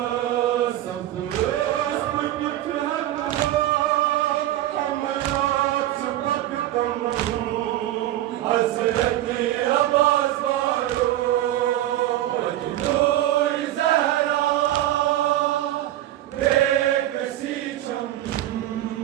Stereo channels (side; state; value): left; quieter; 13.9 dB